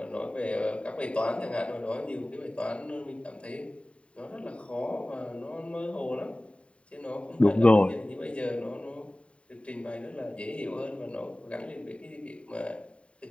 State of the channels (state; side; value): late; right; 0.061 ms